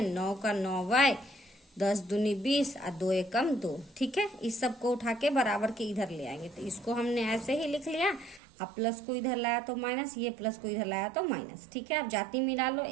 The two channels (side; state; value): left; drops out; at 8.4 s